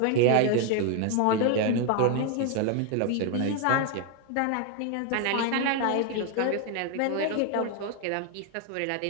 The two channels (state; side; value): different; both; correlation 0.01